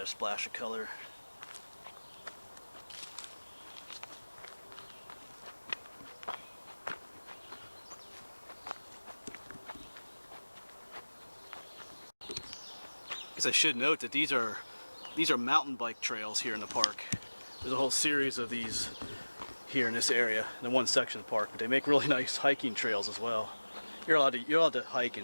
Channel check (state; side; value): inverted; both; correlation -1.00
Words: a splash of color. I should note that these are mountain bike trails here in the park. There's a whole series of these here in this area, in the one section of the park, but they make really nice hiking trails as well. You're allowed to hike